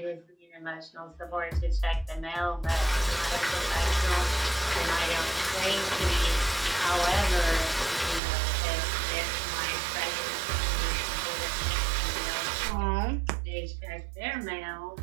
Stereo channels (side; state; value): left; drops out; at 8.2 s